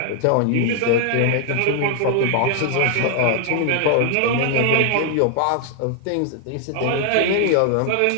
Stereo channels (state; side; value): different; both; correlation 0.00